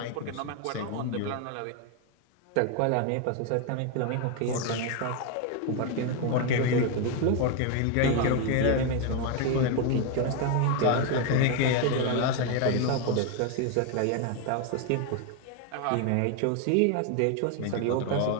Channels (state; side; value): different; both; correlation 0.01